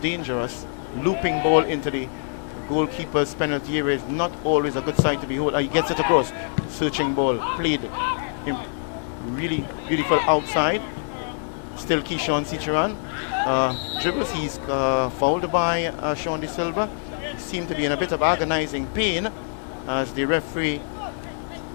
dangerous. Looping ball into the goalkeeper's penalty area is not always a good sign to behold. He gets it across. Searching ball played really beautiful outside. Still Keyshawn Seacharan. Dribbles, he's fouled by Sean De Silva. Seemed to be in a bit of agonizing pain as the referee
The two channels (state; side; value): silent; right; 60 dB below the other